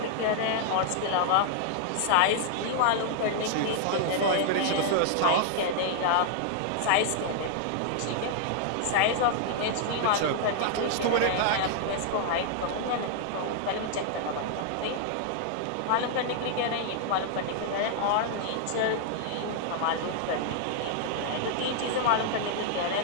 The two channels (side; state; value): both; different; correlation -0.01